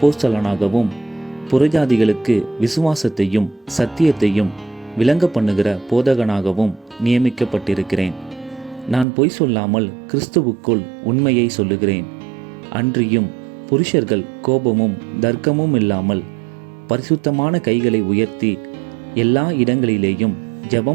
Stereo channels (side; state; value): left; drops out; at 9.1 s